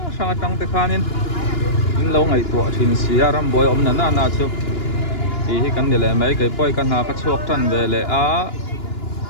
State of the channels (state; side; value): late; right; 2.9 ms